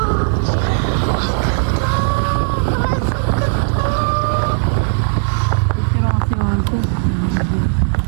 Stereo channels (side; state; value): left; silent; digital silence